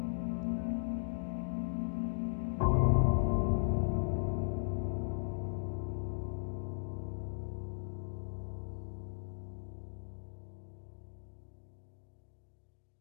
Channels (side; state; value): right; silent; digital silence